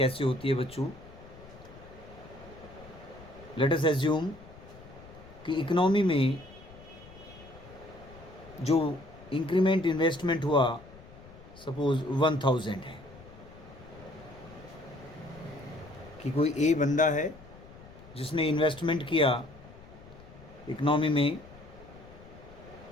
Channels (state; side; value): noise; left; rumble, 19 dB below the sound